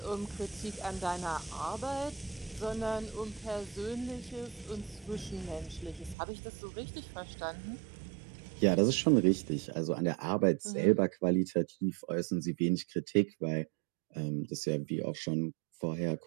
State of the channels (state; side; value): drops out; left; at 6.2 s